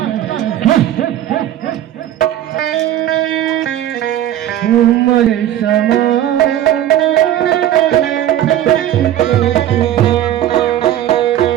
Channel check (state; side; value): quieter; left; 11.9 dB